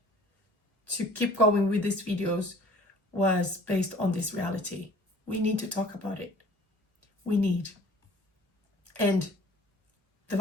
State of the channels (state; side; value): normal; both; correlation 0.50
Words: to keep going with these videos was based on this reality. We need to talk about it. We need. And the